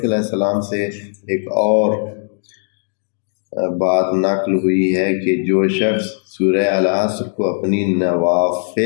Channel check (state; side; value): silent; right; digital silence